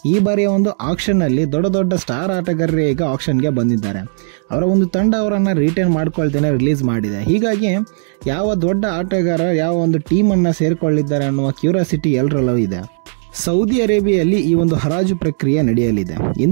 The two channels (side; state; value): left; silent; digital silence